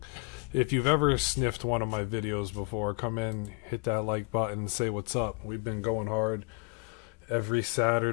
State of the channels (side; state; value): right; quieter; 32.8 dB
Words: If you've ever sniffed one of my videos before, come in, hit that like button, and say what's up. We've been going hard every